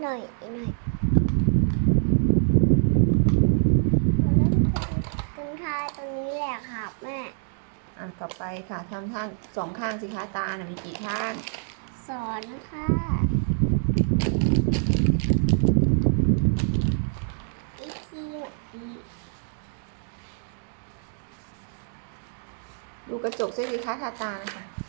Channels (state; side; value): silent; left; 61 dB below the other